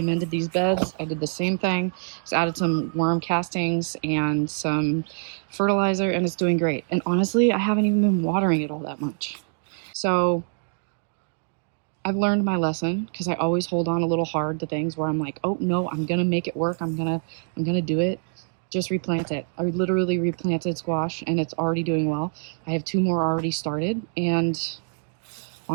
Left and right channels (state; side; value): silent; left; 62 dB below the other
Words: these beds. I did the same thing. Just added some worm castings and some fertilizer, and it's doing great. And honestly, I haven't even been watering it all that much. So I've learned my lesson, because I always hold on a little hard to things where I'm like, oh no, I'm gonna make it work, I'm gonna do it. Just replant it. I literally replanted squash, and it's already doing well. I have 2 more already started, and